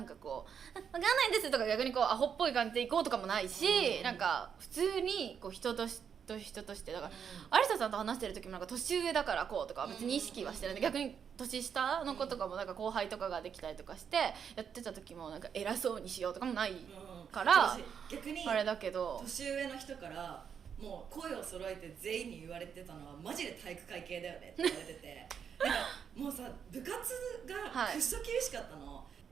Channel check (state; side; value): quieter; left; 7.4 dB